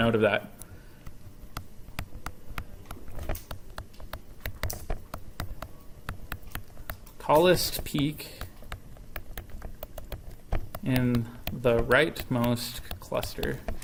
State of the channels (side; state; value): both; identical; correlation 1.00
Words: of that. Tallest peak in the rightmost cluster.